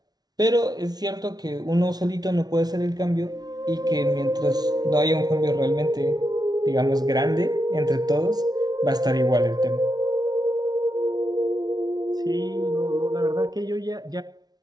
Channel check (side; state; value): left; late; 0.19 ms